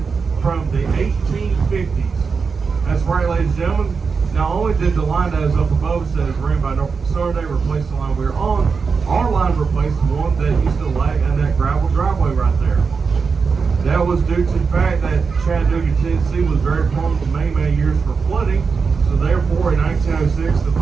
from the 1850s. That's right, ladies and gentlemen. Not only did the line that is up above us that is ran by Norfolk Southern, they replaced the line we were on, our line replaced the one that used to lag in that gravel driveway right there. That was due to the fact that Chattanooga, Tennessee was very prone to many years for flooding. So therefore, in 1906, the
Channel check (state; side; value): quieter; left; 5.2 dB